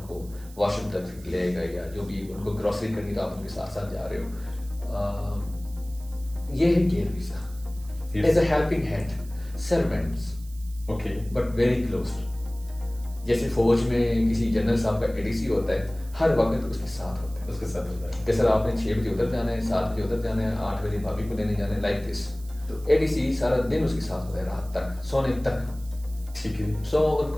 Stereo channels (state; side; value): noise; right; hiss, 22 dB below the sound